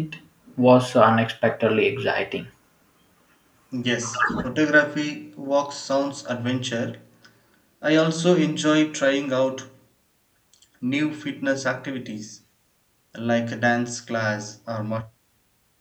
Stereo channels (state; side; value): identical; both; correlation 1.00